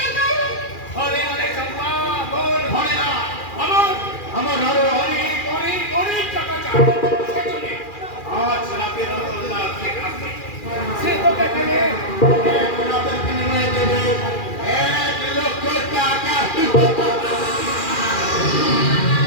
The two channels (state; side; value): late; right; 2.4 ms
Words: ঘরে অনেক চম্পা বল ঘরে না আমার আমার আরো অনেক অনেক অনেক টাকা চাই সেজন্য আজ রাতে রতনলাল শেখ আসবে সে তোকে পেলে এক রাতের বিনিময়ে দেবে 1 লক্ষ টাকা।